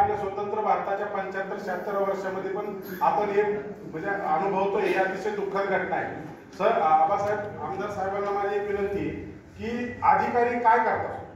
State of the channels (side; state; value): both; identical; correlation 1.00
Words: स्वतंत्र भारताच्या 75-76 वर्षामध्ये पण आपण हे म्हणजे अनुभवतो. हे अतिशय दुःखद घटना आहे. सर, आबासाहेब आमदार साहेबांना माझी एक विनंती की अधिकारी काय करतात?